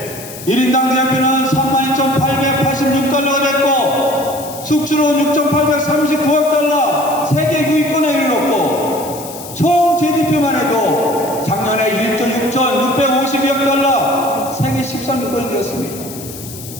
1인당 GNP는 32,886달러가 됐고 수출은 6,839억 달러, 세계 9위권에 이르렀고 총 GDP만 해도 작년에 1조 6,652억 달러, 세계 13위권이 되었습니다.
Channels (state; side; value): noise; left; hiss, 13 dB below the sound